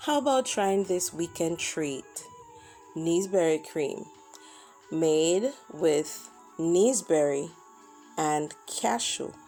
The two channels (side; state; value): both; identical; correlation 1.00